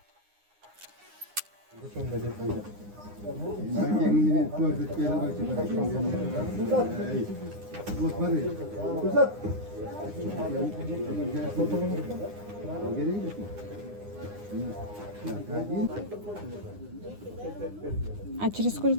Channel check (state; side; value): late; left; 9.8 ms